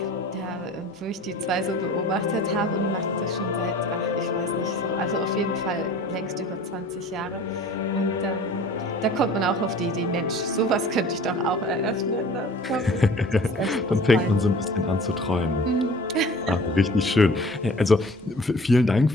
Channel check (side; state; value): both; normal; correlation 0.45